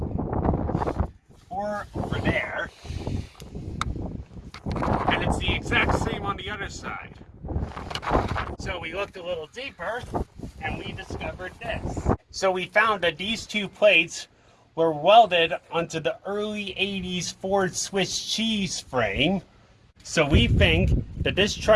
Or over there, and it's the exact same on the other side. So we looked a little deeper, and we discovered this. So we found that these two plates were welded onto the early 80s Ford Swiss cheese frame. So we think that this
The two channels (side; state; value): both; identical; correlation 1.00